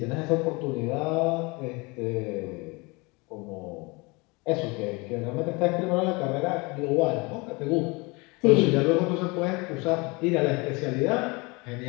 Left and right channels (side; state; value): right; quieter; 26.8 dB